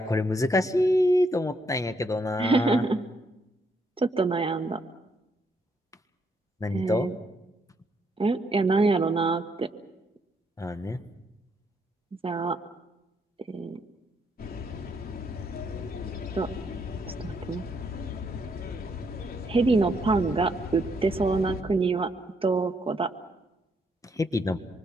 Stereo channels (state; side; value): normal; both; correlation 0.74